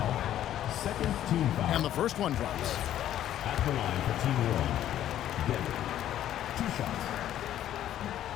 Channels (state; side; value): quieter; right; 11.8 dB